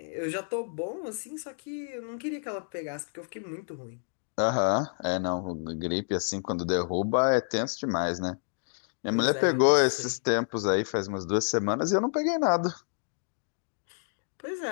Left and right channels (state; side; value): silent; right; digital silence